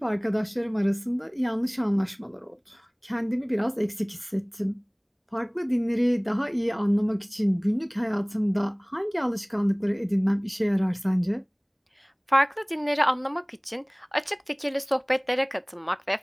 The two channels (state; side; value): identical; both; correlation 1.00